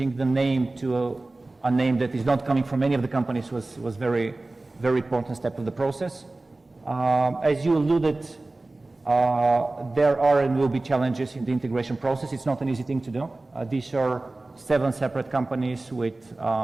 the name to a name that is not coming from any of the companies was very very important step of the process. As you alluded, there are and will be challenges in the integration process. It's not an easy thing to do. These are 7 separate companies with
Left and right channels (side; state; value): left; quieter; 3.0 dB